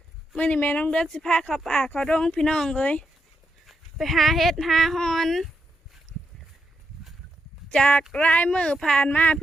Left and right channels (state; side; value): normal; both; correlation 0.83